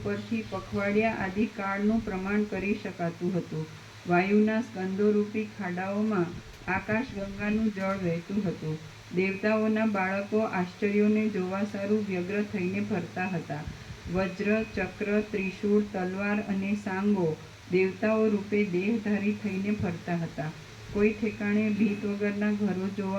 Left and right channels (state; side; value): identical; both; correlation 1.00